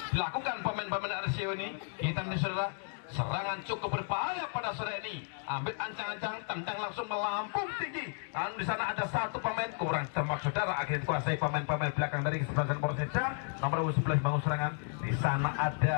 Dilakukan pemain-pemain RCO ini. Kita lihat saudara, serangan cukup berbahaya pada sore ini. Ambil ancang-ancang, tendang langsung melampung tinggi. Dan di sana ada satu pemain kurang cermat saudara. Akhirnya dikuasai pemain-pemain belakang dari kesebelasan Persija. Nomor 11 bangun serangan. Di sana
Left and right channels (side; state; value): right; silent; 56 dB below the other